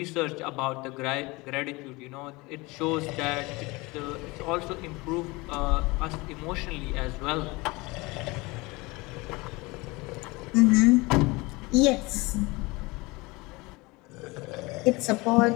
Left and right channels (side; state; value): right; quieter; 23.8 dB